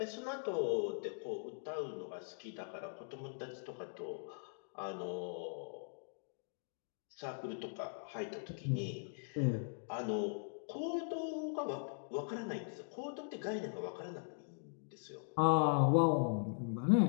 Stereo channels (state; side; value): silent; right; digital silence